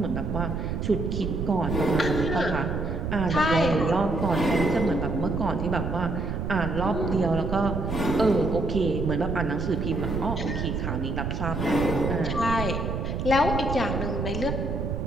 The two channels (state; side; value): noise; right; rumble, 2 dB below the sound